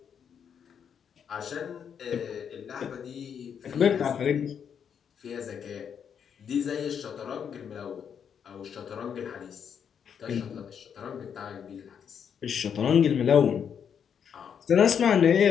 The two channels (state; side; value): quieter; right; 7.7 dB